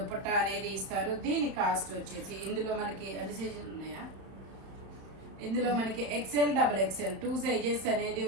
అనేది ఇస్తారు. దీని కాస్ట్ వచ్చేసి ఇందులో మనకి అన్ని సైజులు ఉన్నాయా? ఇందులో మనకి ఎక్సెల్, డబుల్ ఎక్సెల్ 2 సైజెస్ అనేది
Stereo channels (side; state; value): left; late; 33 ms